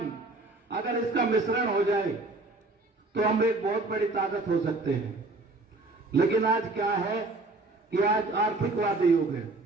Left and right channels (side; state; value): left; quieter; 3.2 dB